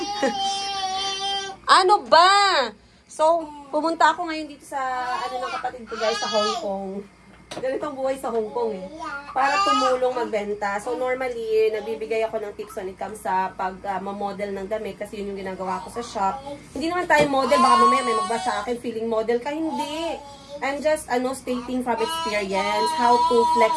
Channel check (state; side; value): identical; both; correlation 1.00